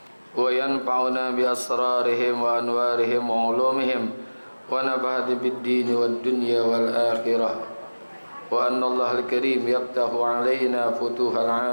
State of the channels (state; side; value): inverted; both; correlation -1.00